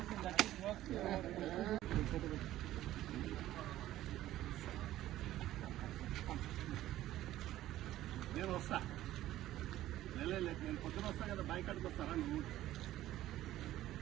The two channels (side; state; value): left; quieter; 14.2 dB